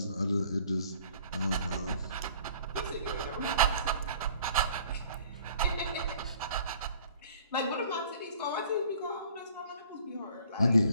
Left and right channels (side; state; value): both; inverted; correlation -0.53